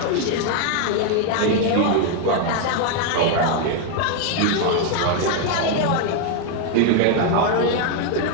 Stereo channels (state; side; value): different; both; correlation 0.01